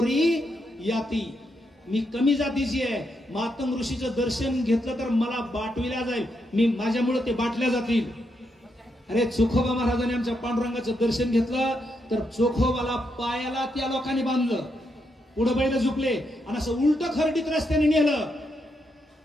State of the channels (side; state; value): both; normal; correlation 0.81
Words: याती, मी कमी जातीची आहे. मातंग ऋषीचं दर्शन घेतलं तर मला बाटविल्या जाईल, मी माझ्यामुळे ते बाटल्या जातील. अरे चोखोबा महाराजांनी आमच्या पांडुरंगाचं दर्शन घेतलं तर चोखोबाला पायाला त्या लोकांनी बांधलं, पुढे बैल झुकले आणि असं उलट खरडीत रस्त्याने नेलं.